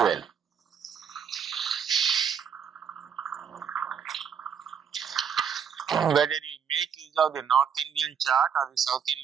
Whether you make use of the North Indian chart or the South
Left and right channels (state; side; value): quieter; left; 7.4 dB